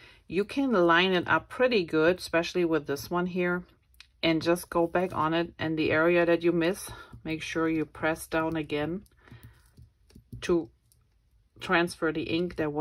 You can line it up pretty good, especially with this one here, and just go back on it, and the area that you miss, make sure you press down again to transfer the ink that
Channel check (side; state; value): both; identical; correlation 1.00